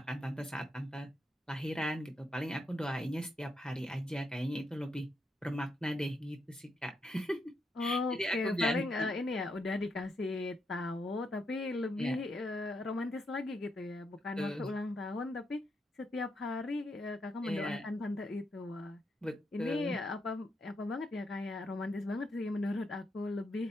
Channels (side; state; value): both; normal; correlation 0.80